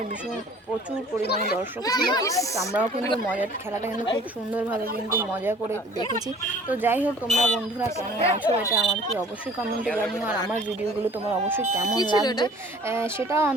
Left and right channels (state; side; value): normal; both; correlation 0.50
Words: ভীষণ প্রচুর পরিমাণে দর্শক ছিল। তো আমরাও কিন্তু খেলাটা কিন্তু খুব সুন্দরভাবে কিন্তু মজা করে দেখেছি। তো যাই হোক, তোমরা বন্ধুরা কেমন আছো এটা আমাকে অবশ্যই কমেন্টে জানিও। আর আমার ভিডিওগুলো তোমার অবশ্যই কেমন লাগছে সেটাও